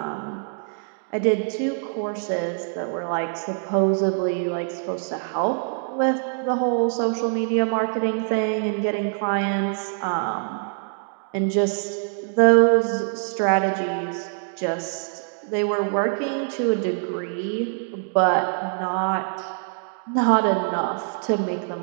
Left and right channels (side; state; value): left; silent; 62 dB below the other